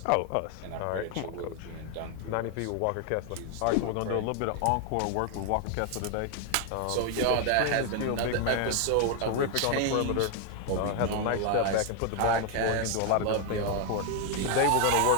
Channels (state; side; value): different; both; correlation 0.00